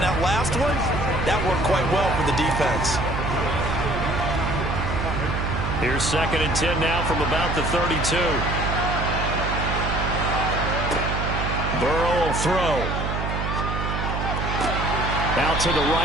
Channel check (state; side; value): noise; right; hum, 2 dB below the sound